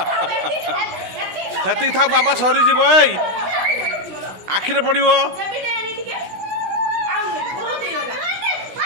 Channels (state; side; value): late; left; 16 ms